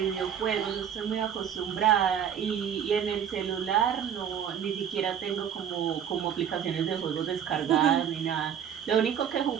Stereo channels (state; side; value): quieter; left; 8.6 dB